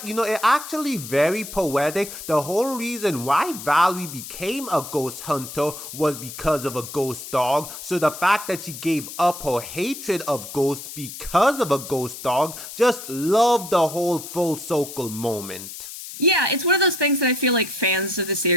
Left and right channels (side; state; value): left; noise; hiss, 11 dB below the sound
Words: you know, it actually very poetic. The whole reason why Valerie became a ghost hunter was because of a ghost dog. So the fact that she gave up her hatred of ghosts because of a ghost dog, just love the whole full circle moment. Yeah, it's one of those things that I feel like fans of the